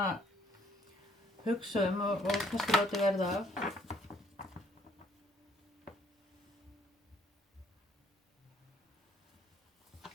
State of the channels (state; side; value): normal; both; correlation 0.64